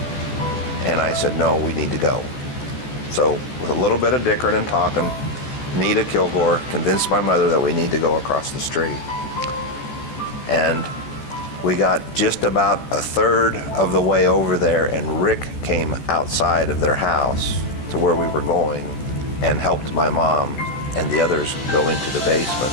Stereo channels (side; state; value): right; late; 14 ms